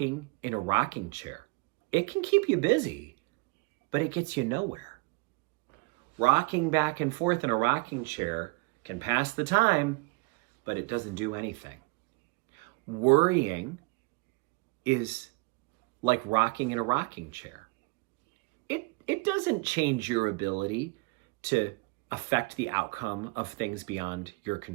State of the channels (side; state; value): left; quieter; 26.5 dB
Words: in a rocking chair. It can keep you busy, but it gets you nowhere. Rocking back and forth in a rocking chair can pass the time, but it doesn't do anything. Worrying is like rocking in a rocking chair. It doesn't change your ability to affect the outcome of things beyond your